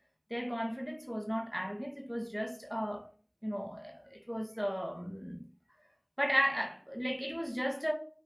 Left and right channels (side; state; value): both; identical; correlation 1.00